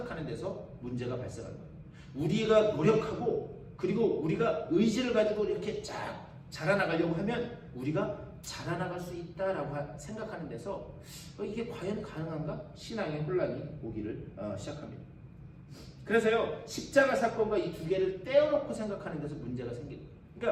데서 문제가 발생하는 거예요. 우리가 노력하고 그리고 우리가 의지를 가지고 이렇게 쫙 자라나가려고 하면 우리가 자라나갈 수 있다라고 생각하는 데서 이게 과연 가능한가? 신앙의 혼란이 오기를 시작합니다. 그래서요, 십자가 사건과 이 두 개를 떼어놓고 생각하는 데서 문제가 생깁니다.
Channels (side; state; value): both; identical; correlation 1.00